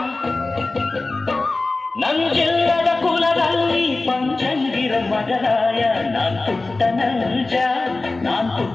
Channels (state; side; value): quieter; right; 3.3 dB